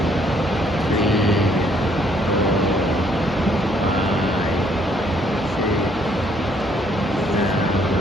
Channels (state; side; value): normal; both; correlation 0.66